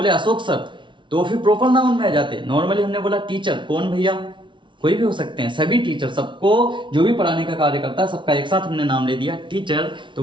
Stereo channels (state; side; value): late; left; 0.24 ms